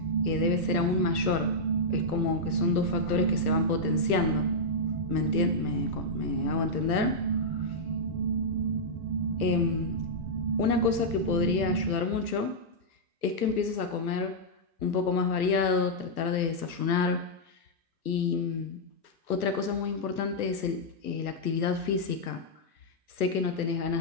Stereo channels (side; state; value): left; late; 1.3 ms